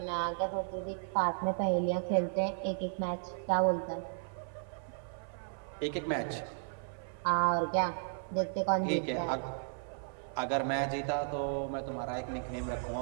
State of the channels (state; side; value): silent; left; 55 dB below the other